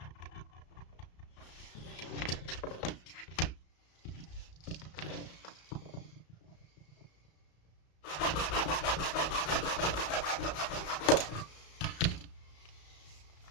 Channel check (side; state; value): right; late; 34 ms